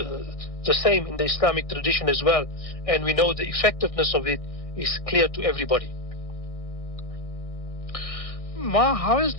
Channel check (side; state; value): right; late; 1.6 ms